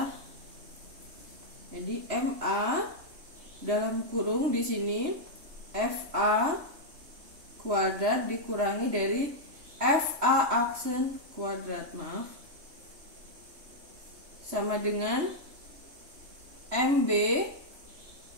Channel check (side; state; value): left; late; 3.2 ms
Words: Jadi MA dalam kurung di sini FA kuadrat dikurangi dari FA aksen kuadrat, maaf, sama dengan MB.